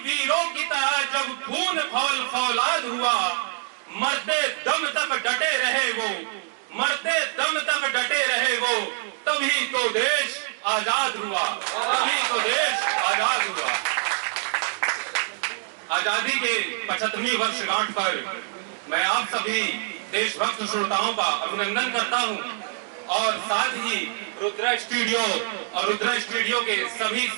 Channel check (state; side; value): silent; left; 62 dB below the other